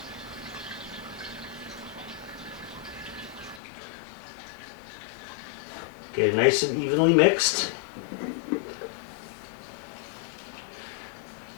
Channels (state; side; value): drops out; right; at 3.6 s